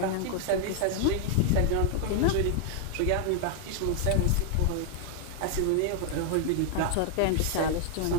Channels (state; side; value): different; both; correlation 0.00